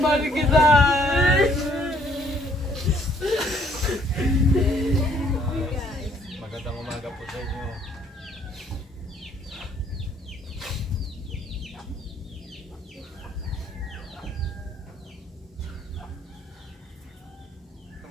kita. Magandang umaga po sa inyo.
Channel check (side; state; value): both; normal; correlation 0.64